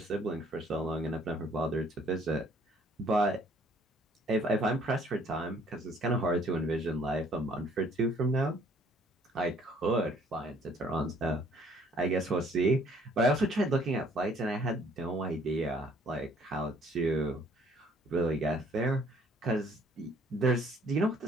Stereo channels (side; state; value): both; normal; correlation 0.60